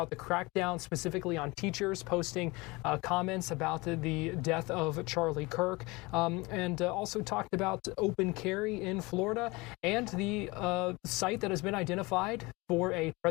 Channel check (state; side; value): quieter; right; 23.9 dB